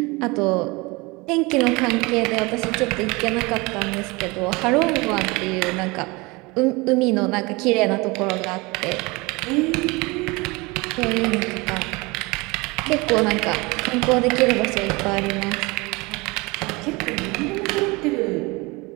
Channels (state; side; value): quieter; left; 24.9 dB